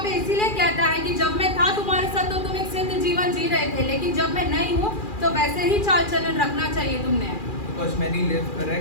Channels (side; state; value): right; late; 2.4 ms